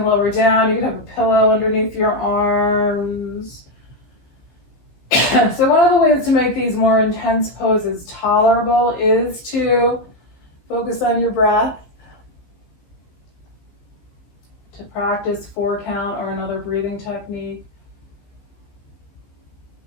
lower down, you can have a pillow underneath your arms. So one of the ways to make these more intense poses tolerable is to focus on your breath, to practice 4 count or another breathing technique.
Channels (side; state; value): right; late; 15 ms